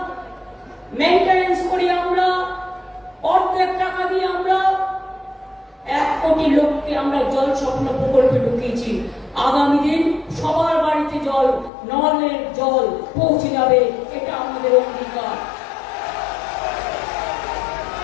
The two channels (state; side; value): drops out; right; at 11.7 s